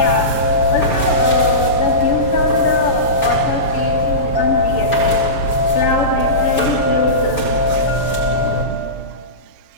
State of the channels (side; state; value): right; late; 6.8 ms